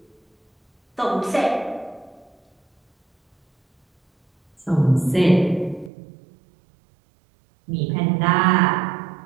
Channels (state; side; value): drops out; left; at 5.9 s